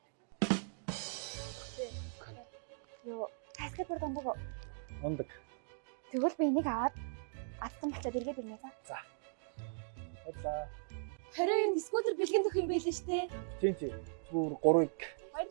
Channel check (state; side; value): silent; left; digital silence